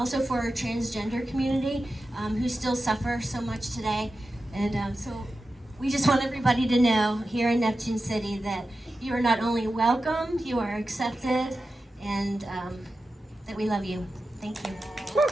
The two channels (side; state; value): both; normal; correlation 0.92